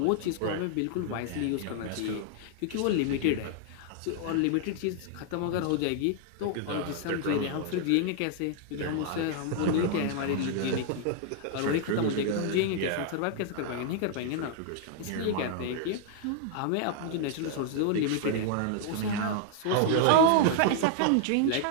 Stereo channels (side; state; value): both; different; correlation 0.00